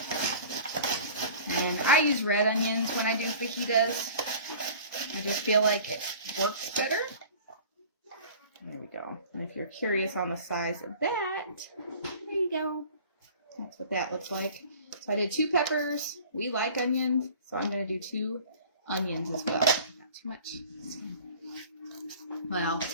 And I use red onions when I do fajitas. I just feel like it works better. There we go. And if you're curious on the size of that, there you go. That's what that looks like. So I did 2 peppers. We like onions, so I'm going to do 2 onions as well. Not too much. Well,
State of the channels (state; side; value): inverted; both; correlation -0.45